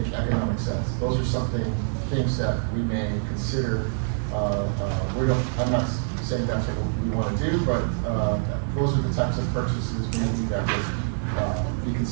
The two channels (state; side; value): silent; left; 57 dB below the other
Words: economic sense. Those are things that we may consider. I'm not saying that's what we want to do, but those are the types of purchases maybe that would be